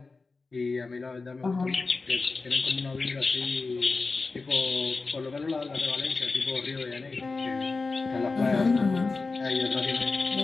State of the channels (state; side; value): quieter; right; 4.0 dB